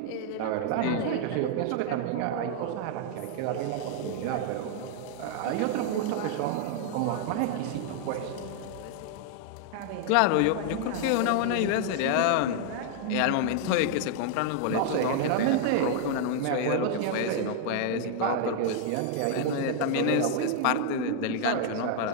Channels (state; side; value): different; both; correlation 0.00